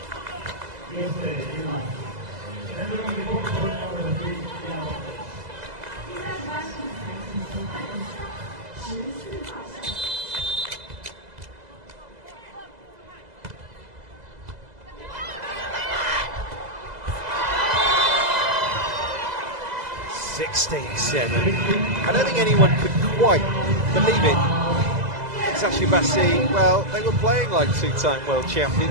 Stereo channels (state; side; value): late; left; 2.0 ms